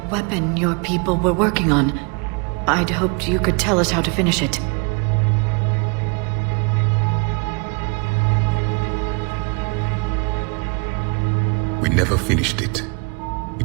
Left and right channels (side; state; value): left; quieter; 33.1 dB